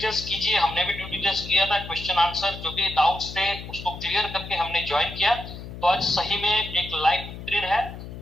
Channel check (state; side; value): noise; left; hum, 11 dB below the sound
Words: कीजिए, हमने भी ड्यू डिलिजेंस किया था, क्वेश्चन आंसर जो भी डाउट्स थे उसको क्लियर करके हमने ज्वाइन किया। तो आज सही में एक लाइफ बेहतरीन है